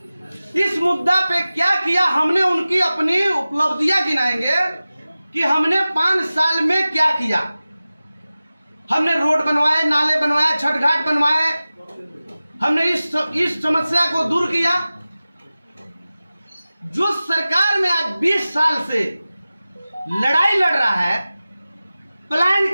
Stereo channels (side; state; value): both; inverted; correlation -0.96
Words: इस मुद्दा पे क्या किया। हमने उनकी अपनी उपलब्धियां गिनाएंगे कि हमने 5 साल में क्या किया। हमने रोड बनवाए, नाले बनवाए, छठ घाट बनवाए, हमने इस समस्या को दूर किया। जो सरकार में आज 20 साल से लड़ाई लड़ रहा है,